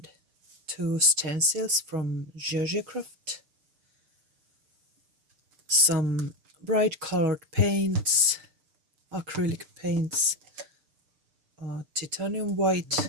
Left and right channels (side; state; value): left; late; 6.7 ms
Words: two stencils from Giogiocraft, some bright colored paints, acrylic paints, titanium